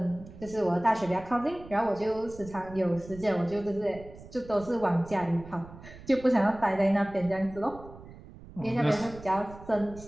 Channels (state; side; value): noise; right; rumble, 17 dB below the sound